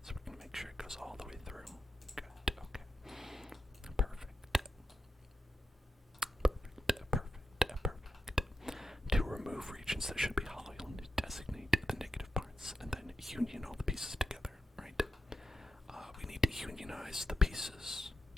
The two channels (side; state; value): both; normal; correlation 0.86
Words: So we're going to make sure it goes all the way through. Good, okay. Perfect. Perfect, perfect, perfect. To remove regions that should be hollow, you'll need to designate the negative parts and then union all the pieces together, right? We need to unionize the pieces.